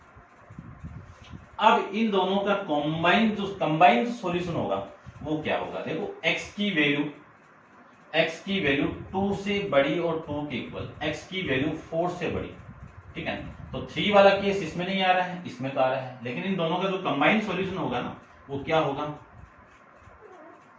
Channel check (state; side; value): identical; both; correlation 1.00